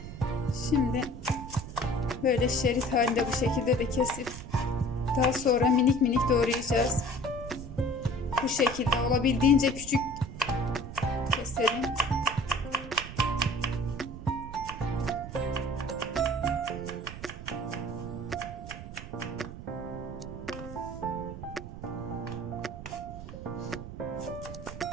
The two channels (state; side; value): noise; right; rumble, 11 dB below the sound